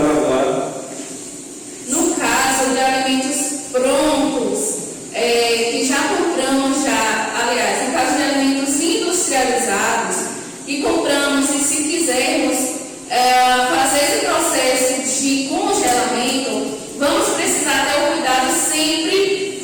agora. No caso de alimentos prontos, que já compramos aliás, no caso de alimentos industrializados, que compramos e se quisermos fazer esse processo de congelamento, vamos precisar ter o cuidado sempre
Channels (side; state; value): both; identical; correlation 1.00